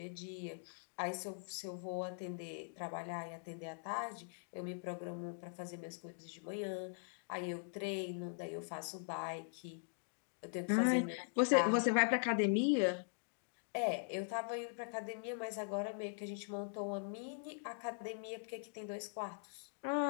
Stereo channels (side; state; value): right; silent; digital silence